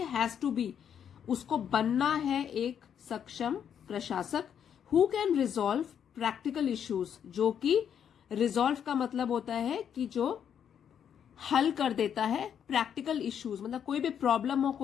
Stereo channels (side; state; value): right; quieter; 8.5 dB